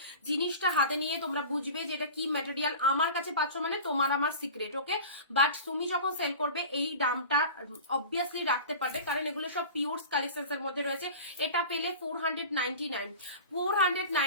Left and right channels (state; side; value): inverted; both; correlation -0.36